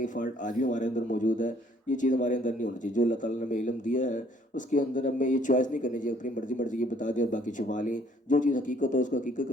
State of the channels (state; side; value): normal; both; correlation 0.62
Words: فالٹ آج بھی ہمارے اندر موجود ہے، یہ چیز ہمارے اندر نہیں ہونی چاہیے، جو اللہ تعالیٰ نے ہمیں علم دیا ہے اس کے اندر ہمیں یہ چوائس نہیں کرنی چاہیے، اپنی مرضی یہ بتا دیں اور باقی چھپا لیں، جو چیز حقیقت ہو اس کو حقیقت کے